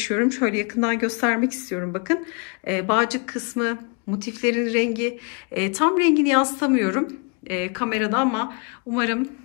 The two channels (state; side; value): quieter; right; 35.1 dB